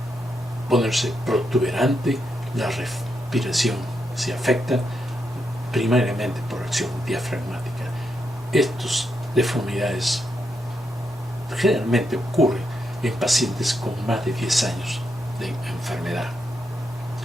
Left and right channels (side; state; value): both; normal; correlation 0.82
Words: ponerse protuberante, la respiración se afecta primariamente por acción diafragmática. Estas deformidades generalmente ocurren en pacientes con más de 10 años de enfermedad.